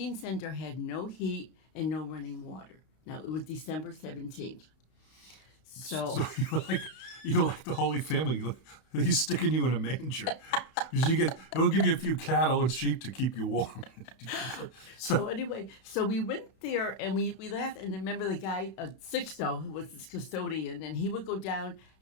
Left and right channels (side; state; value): right; late; 32 ms